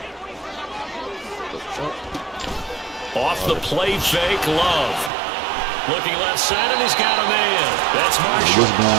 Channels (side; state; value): left; drops out; at 5.1 s